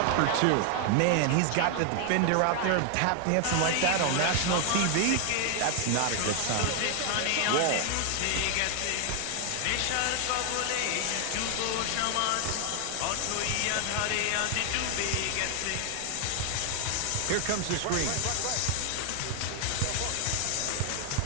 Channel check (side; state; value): both; different; correlation 0.00